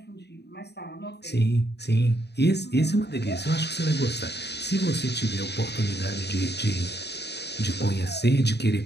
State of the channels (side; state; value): right; late; 0.49 ms